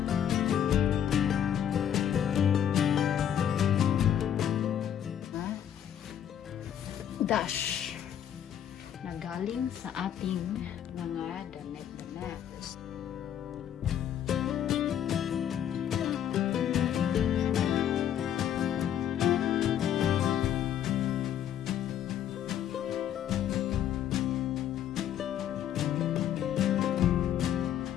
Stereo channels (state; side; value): quieter; right; 9.9 dB